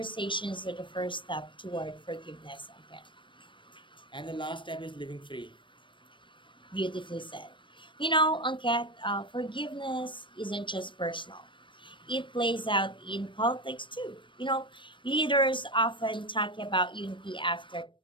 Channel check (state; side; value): late; right; 0.24 ms